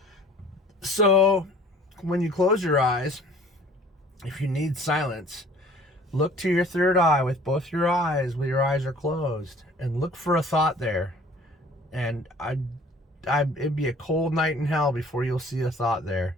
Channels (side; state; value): both; normal; correlation 0.51